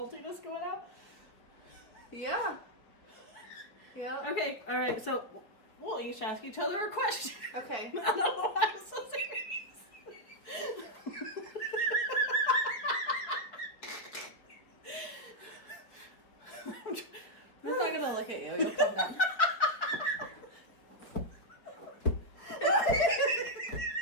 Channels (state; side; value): late; right; 4.9 ms